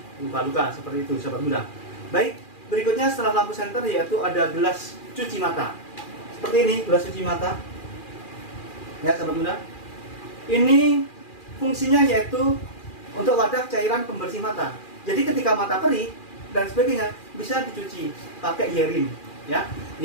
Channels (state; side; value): late; right; 2.4 ms